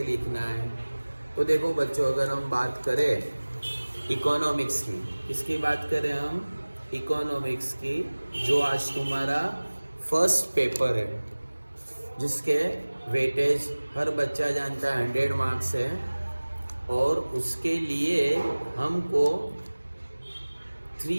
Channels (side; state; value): both; inverted; correlation -1.00